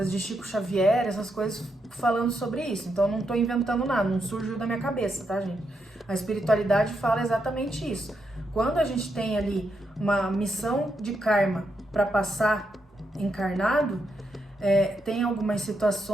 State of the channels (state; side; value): normal; both; correlation 0.82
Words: de Chico Xavier, essas coisas falando sobre isso. Então eu não estou inventando nada, não surgiu da minha cabeça, tá, gente? A espiritualidade fala exatamente isso. Quando a gente tem ali uma missão de karma para passar encarnado, tem algumas